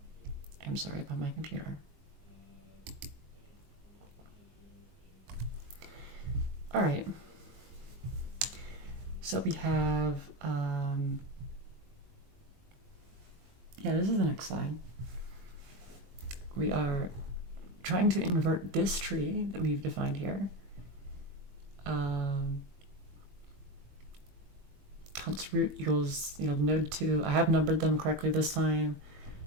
I'm sorry about my computer. All right. So we have, this is the next slide. We are trying to invert this tree that we've defined here. Const root equals, node 2. I have numbered them correctly this time.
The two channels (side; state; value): left; late; 21 ms